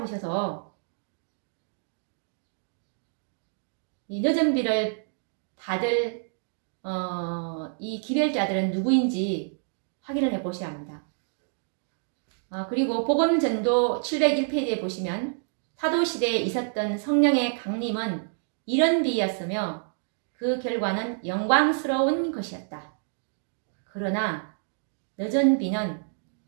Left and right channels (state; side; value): silent; left; digital silence